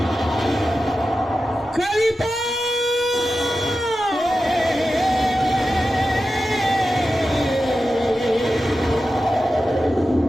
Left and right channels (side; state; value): both; normal; correlation 0.93